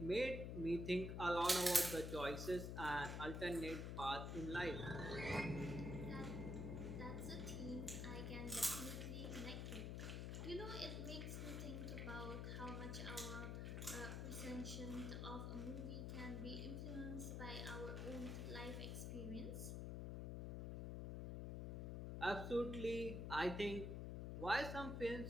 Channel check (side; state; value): left; noise; hum, 3 dB below the sound